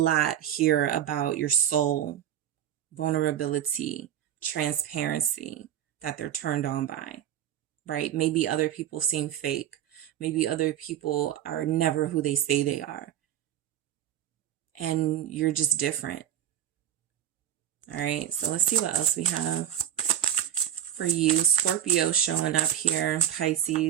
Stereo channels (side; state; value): left; quieter; 10.9 dB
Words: here about your soul, vulnerability, transparency, that they're turned on by, right? Maybe other people seem fake. Maybe other people are never who they say they are. And you're just different. All right, so let's see what else we have for you. Scorpio showing up here,